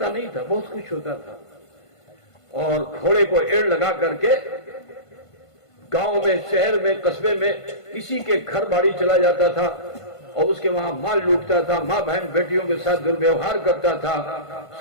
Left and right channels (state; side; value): late; right; 1.5 ms